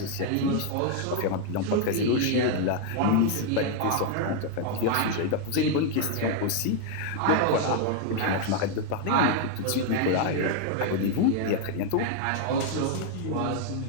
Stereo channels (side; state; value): both; different; correlation 0.00